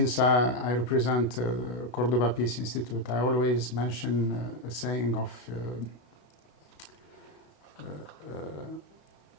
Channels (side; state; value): right; late; 32 ms